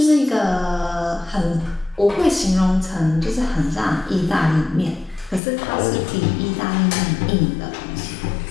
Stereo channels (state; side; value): drops out; right; at 5.4 s